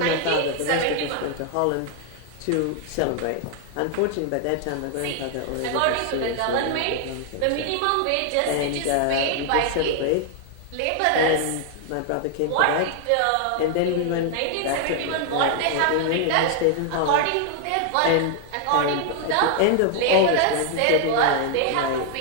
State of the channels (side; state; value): both; different; correlation 0.00